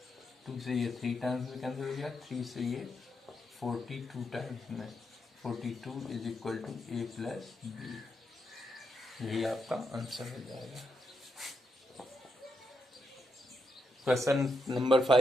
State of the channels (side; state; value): both; normal; correlation 0.82